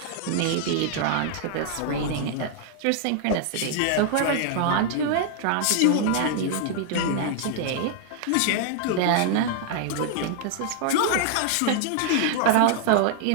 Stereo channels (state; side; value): different; both; correlation -0.01